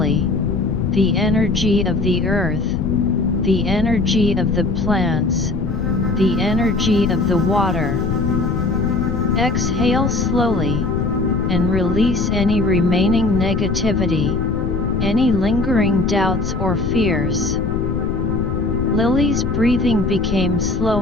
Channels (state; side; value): noise; left; rumble, 3 dB below the sound